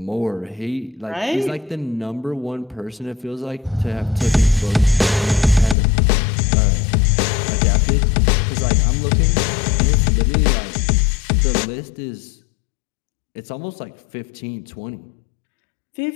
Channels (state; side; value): drops out; right; at 5.8 s